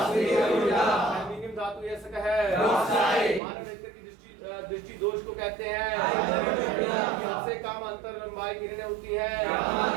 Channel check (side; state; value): left; drops out; at 3.4 s